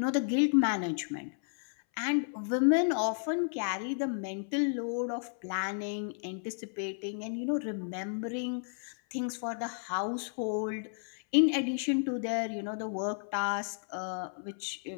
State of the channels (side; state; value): right; silent; 56 dB below the other